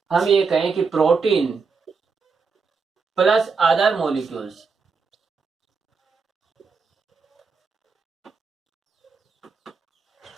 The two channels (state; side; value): quieter; left; 5.0 dB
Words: हम ये कहें कि protein plus other molecules,